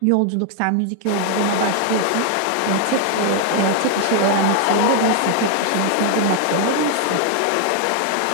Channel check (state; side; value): different; both; correlation 0.00